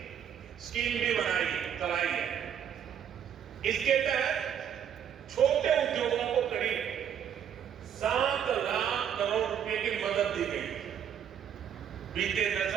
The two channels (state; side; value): quieter; left; 8.9 dB